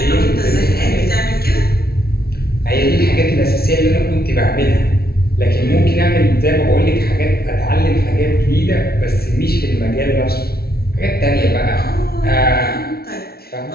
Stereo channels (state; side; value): late; right; 0.45 ms